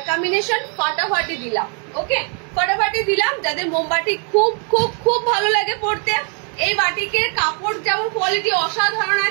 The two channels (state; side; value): quieter; left; 39.8 dB